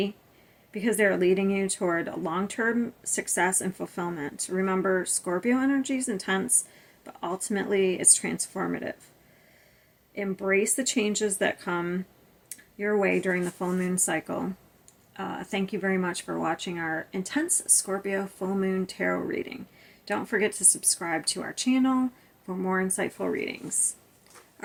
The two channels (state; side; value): identical; both; correlation 1.00